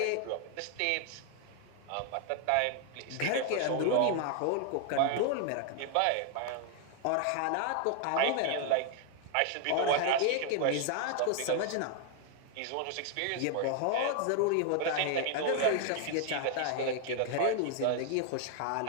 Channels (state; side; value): different; both; correlation 0.00